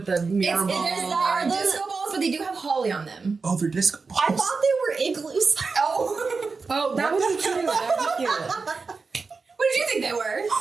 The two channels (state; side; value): quieter; left; 4.5 dB